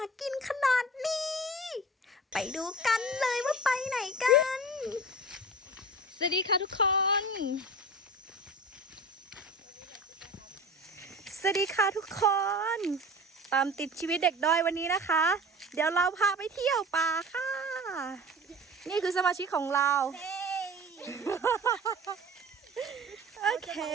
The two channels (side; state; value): both; normal; correlation 0.37